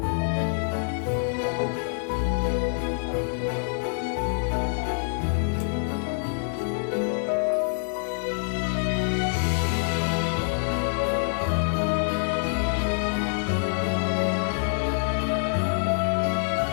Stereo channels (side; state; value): right; silent; digital silence